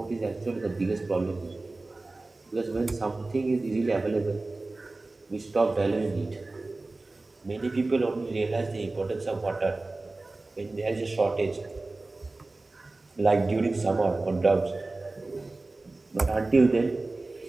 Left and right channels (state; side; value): quieter; left; 3.2 dB